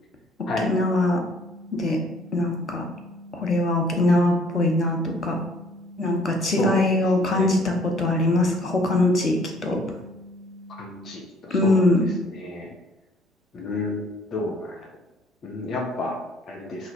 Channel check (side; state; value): both; normal; correlation 0.60